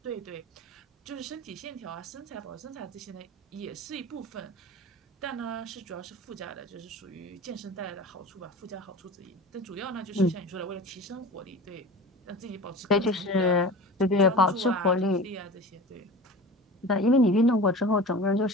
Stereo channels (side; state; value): both; normal; correlation 0.35